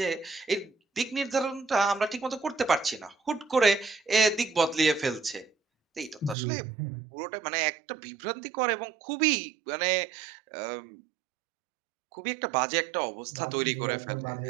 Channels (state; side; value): drops out; left; at 6.4 s